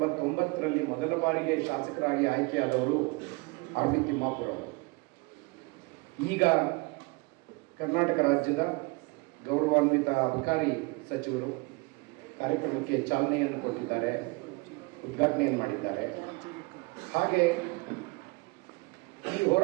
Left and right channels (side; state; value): left; quieter; 26.5 dB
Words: ಮೊದಲ ಬಾರಿಗೆ ಶಾಸಕರಾಗಿ ಆಯ್ಕೆಯಾದವರು ಆರ್ ಬಿ ತಿಮ್ಮಾಪುರ ಅವರು. ಈಗ ಕರ್ನಾಟಕ ರಾಜ್ಯದ ಗೌರವಾನ್ವಿತ ಅಬಕಾರಿ ಸಚಿವರು ಕಾರ್ಯಕ್ರಮಕ್ಕೆ ಚಾಲನೆಯನ್ನು ಕೊಟ್ಟಿದ್ದಾರೆ, ಉದ್ಘಾಟನೆಯನ್ನು ಮಾಡಿದ್ದಾರೆ. ಹಾಗೆ ಈ